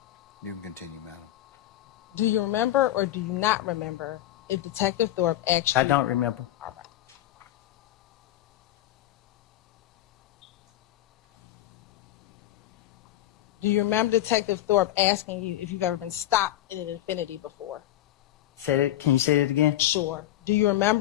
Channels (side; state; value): right; quieter; 13.9 dB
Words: You can continue, madam. do you remember or do you not remember if Detective Thorpe actually? I don't remember. All right. Do you remember Detective Thorpe asking you if you've ever been stopped in an Infinity before? Can you say it again? Sure. Do you